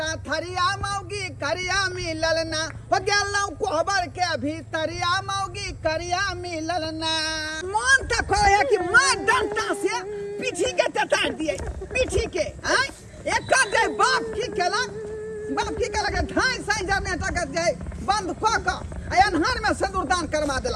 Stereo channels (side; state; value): both; identical; correlation 1.00